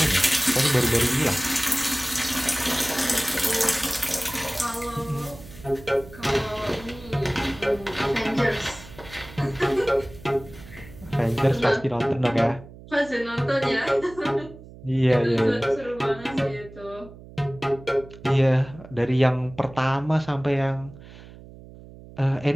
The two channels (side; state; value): right; noise; hum, 18 dB below the sound